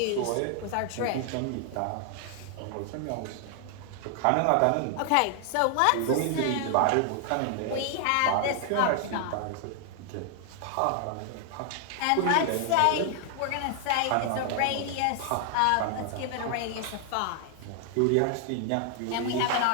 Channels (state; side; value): different; both; correlation 0.00